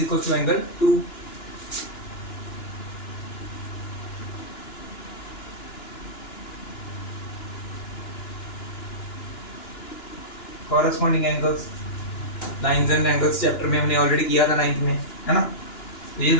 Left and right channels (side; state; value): right; late; 2.9 ms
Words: equal to angle two. Corresponding angles, lines and angles chapter में हमने ऑलरेडी किया था 9th में, है ना। तो ये